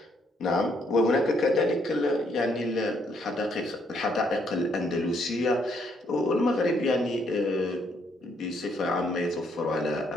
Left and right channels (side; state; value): both; normal; correlation 0.71